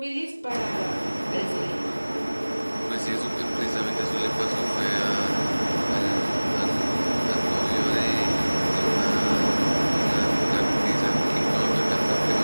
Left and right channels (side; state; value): both; inverted; correlation -1.00